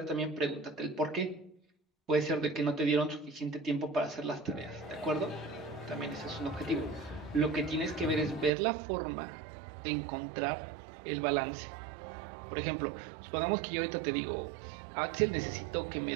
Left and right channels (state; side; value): drops out; left; at 8.5 s